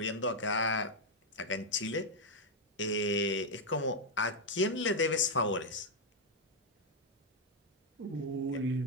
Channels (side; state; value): both; normal; correlation 0.00